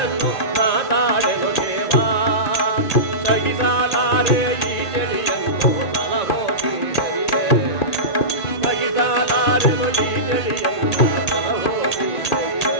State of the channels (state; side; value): late; right; 1.8 ms